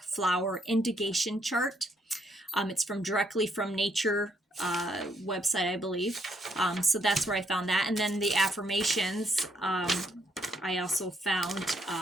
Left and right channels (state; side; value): normal; both; correlation 0.73